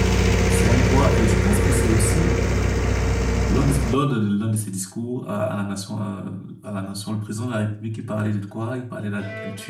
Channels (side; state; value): both; identical; correlation 1.00